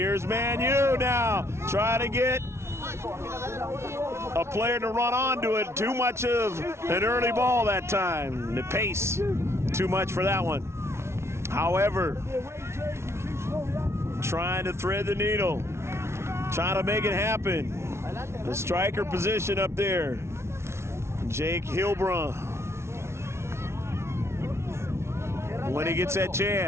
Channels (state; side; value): late; left; 0.13 ms